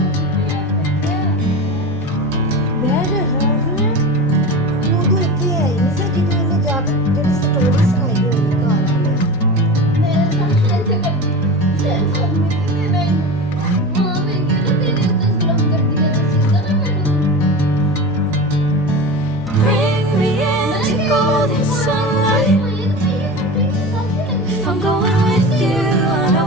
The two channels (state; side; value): normal; both; correlation 0.28